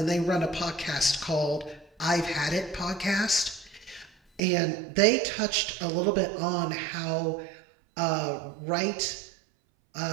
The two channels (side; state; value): left; drops out; at 4.4 s